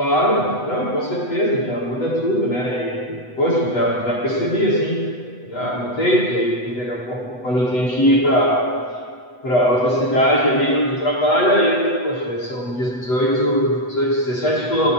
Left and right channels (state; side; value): late; right; 8.1 ms